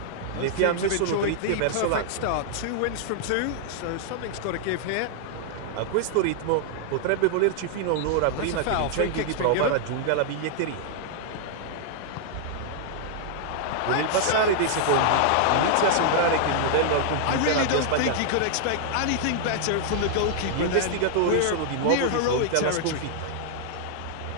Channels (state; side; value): different; both; correlation -0.01